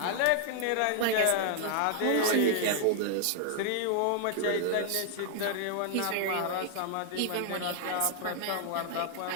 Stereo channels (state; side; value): different; both; correlation 0.00